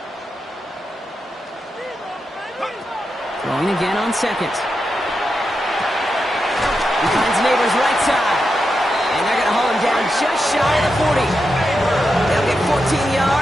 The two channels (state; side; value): normal; both; correlation 0.87